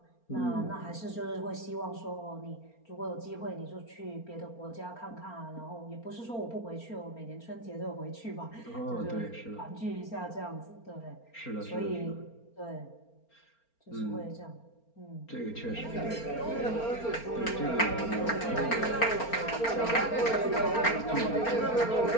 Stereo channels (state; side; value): late; right; 4.4 ms